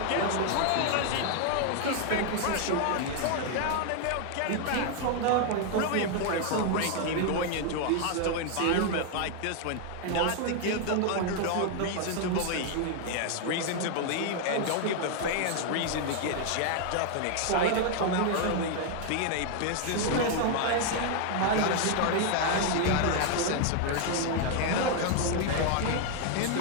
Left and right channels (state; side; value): different; both; correlation 0.00